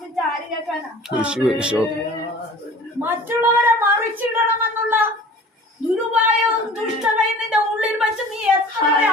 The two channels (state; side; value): normal; both; correlation 0.44